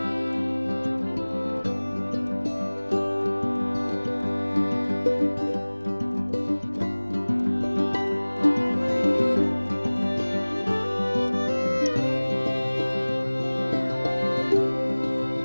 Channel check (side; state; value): both; inverted; correlation -1.00